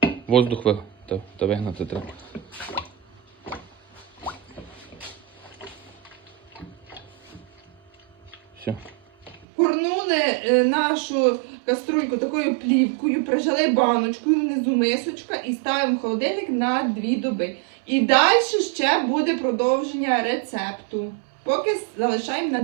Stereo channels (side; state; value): left; drops out; at 9.5 s